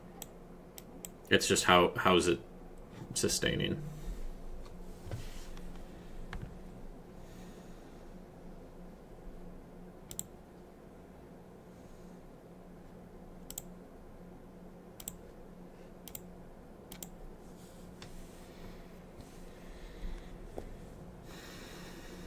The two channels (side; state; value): both; identical; correlation 1.00